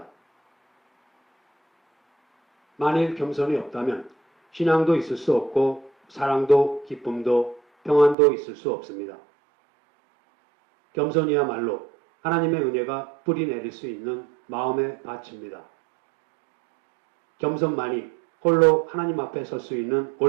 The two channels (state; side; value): drops out; left; at 8.2 s